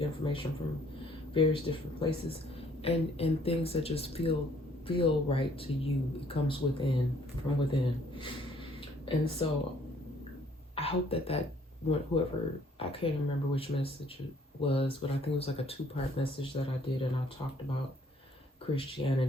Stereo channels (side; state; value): both; normal; correlation 0.61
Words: information from various different places, and things that just feel right to you. It comes from within. And so I hope that whoever, I can't remember which message it was, but I think it was like a 2-part message that I did, and I talked about